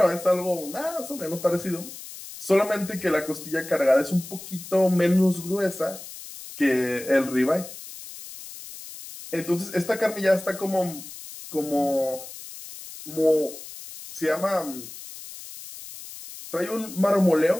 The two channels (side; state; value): left; noise; hiss, 14 dB below the sound